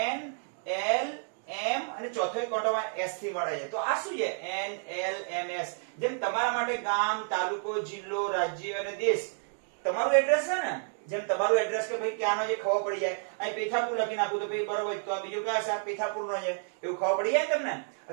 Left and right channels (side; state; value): left; silent; digital silence